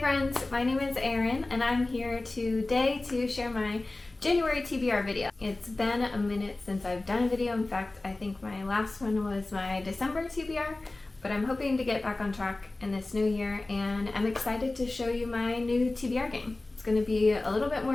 my name is Erin and I'm here today to share my January TBR video. It's been a minute since I've done a video. In fact, I think my last one was my December TBR, but I'm hoping to get back on track in this new year and I'm excited to show you my new TBR game. It's going to be a little bit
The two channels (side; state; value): right; quieter; 3.0 dB